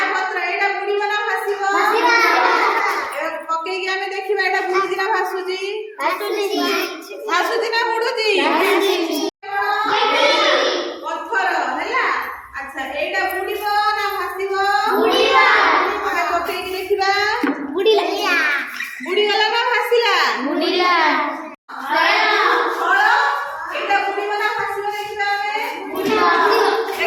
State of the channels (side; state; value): both; identical; correlation 1.00